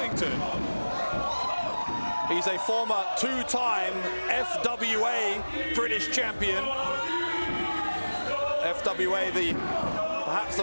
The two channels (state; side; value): inverted; both; correlation -1.00